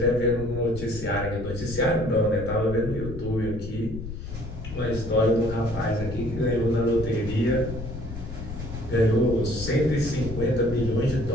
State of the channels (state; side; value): noise; left; rumble, 9 dB below the sound